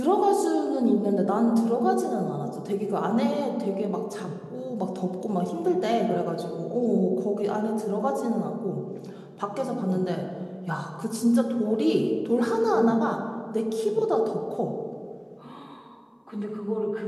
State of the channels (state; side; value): identical; both; correlation 1.00